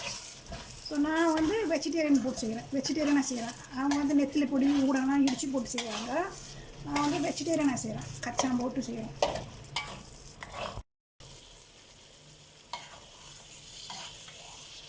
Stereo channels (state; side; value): identical; both; correlation 1.00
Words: ஸோ நான் வந்து வெஜிடேரியன் போட்டு செய்கிறேன், வெஜிடேரியனாக செய்கிறேன். அவங்க வந்து நெத்திலி பொடி ஊடகம்லாம் இடித்து போட்டு செய்வாங்க. நான் வந்து வெஜிடேரியனாக செய்கிறேன், கச்சான் போட்டு செய்கிறேன்.